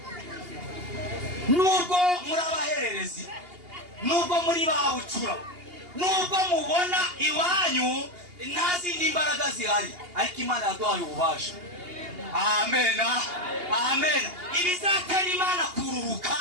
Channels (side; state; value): left; late; 2.8 ms